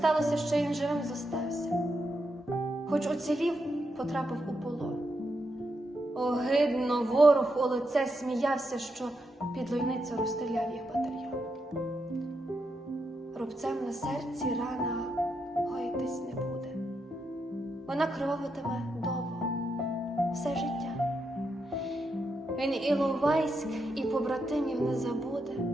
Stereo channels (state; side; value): normal; both; correlation 0.83